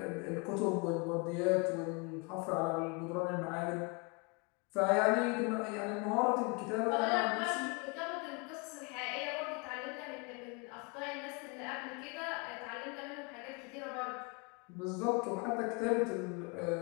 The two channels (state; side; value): quieter; right; 31.0 dB